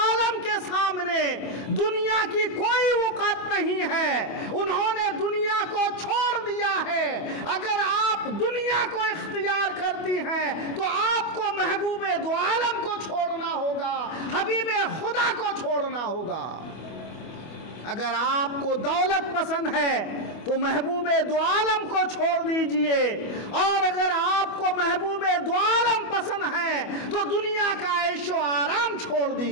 کے سامنے دنیا کی کوئی وقت نہیں ہے، انہوں نے دنیا کو چھوڑ دیا ہے۔ اگر آپ دنیا کو اختیار کرتی ہیں تو آپ کو محبوب دو عالم کو چھوڑنا ہوگا، حبیب خدا کو چھوڑنا ہوگا۔ اگر آپ کو دولت پسند ہے تو محبوب دو عالم کو چھوڑ دیجئے، اور اگر آپ کو محبوب دو عالم پسند ہے تو دنیا کا عیش و آرام چھوڑ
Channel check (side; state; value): right; late; 25 ms